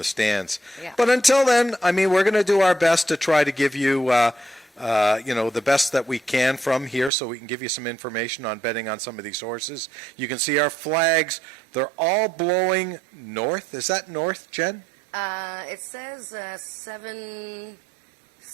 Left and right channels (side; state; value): left; drops out; at 7.1 s